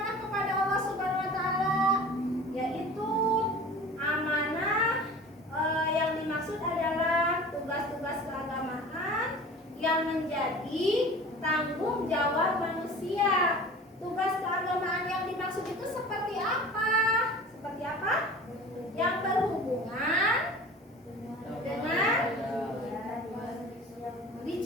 kepada Allah Subhanahu wa taala? Yaitu amanah yang dimaksud adalah tugas-tugas keagamaan yang menjadi tanggung jawab manusia. Tugas keagamaan yang dimaksud itu seperti apa? Seperti apa? Yang berhubungan dengan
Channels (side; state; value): both; normal; correlation 0.40